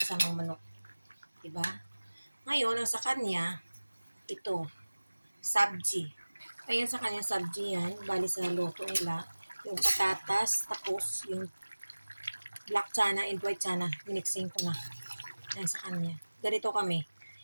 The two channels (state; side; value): inverted; both; correlation -1.00